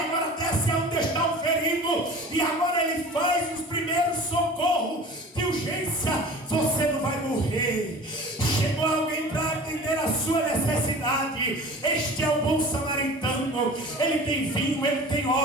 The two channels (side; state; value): both; normal; correlation 0.40